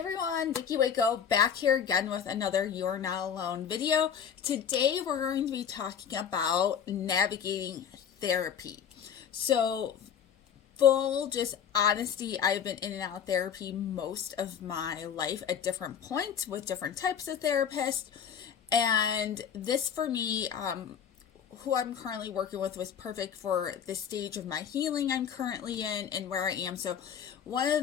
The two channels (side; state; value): right; quieter; 8.0 dB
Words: Vicky Waco back here again with another You're Not Alone video. Today we're going to be talking about navigating therapy. So, full just honesty, I've been in and out of therapy most of my life at different points with different types of therapists. And this for me, who I'm currently working with was perfect for the stage of my healing I'm currently in and where I am. So, one of the